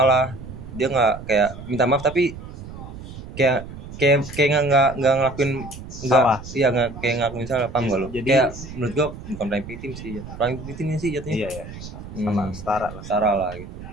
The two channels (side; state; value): right; noise; rumble, 13 dB below the sound